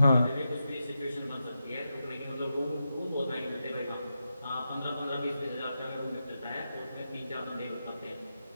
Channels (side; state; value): both; inverted; correlation -0.88